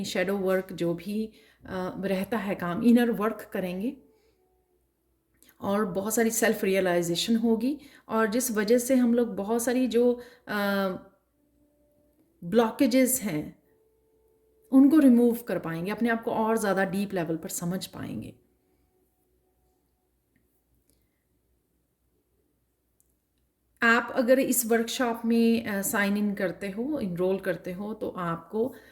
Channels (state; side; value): identical; both; correlation 1.00